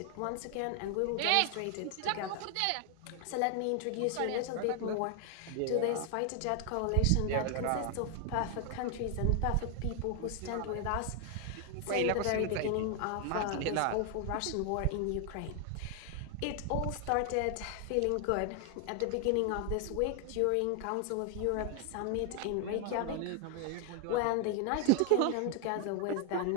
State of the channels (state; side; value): different; both; correlation 0.00